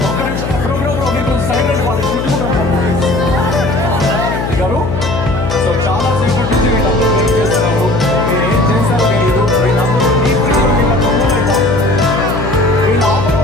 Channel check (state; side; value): noise; left; hum, 4 dB below the sound